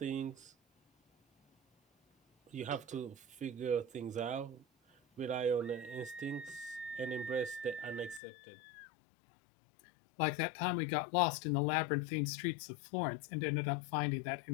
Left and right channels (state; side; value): drops out; right; at 8.2 s